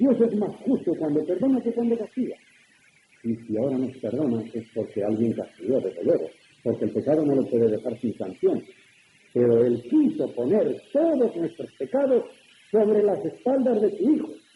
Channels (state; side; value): identical; both; correlation 1.00